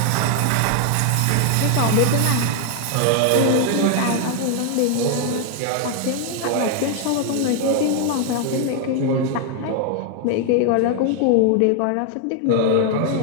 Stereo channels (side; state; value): both; different; correlation 0.00